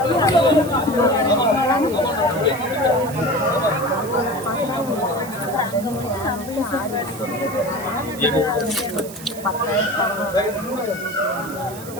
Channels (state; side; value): noise; right; hiss, 15 dB below the sound